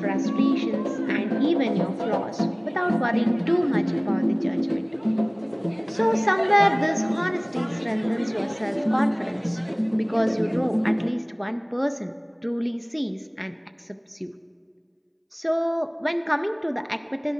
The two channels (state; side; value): identical; both; correlation 1.00